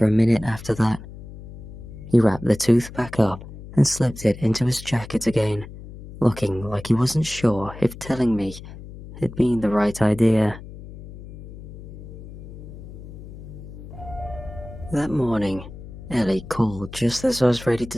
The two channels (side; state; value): left; noise; hum, 14 dB below the sound